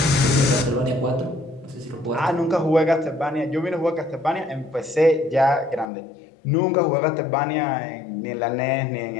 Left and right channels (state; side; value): drops out; right; at 5.9 s